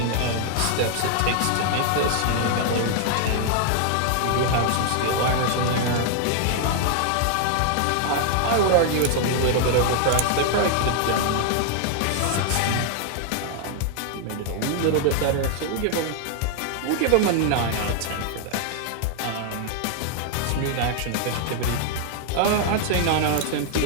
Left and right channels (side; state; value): both; different; correlation 0.00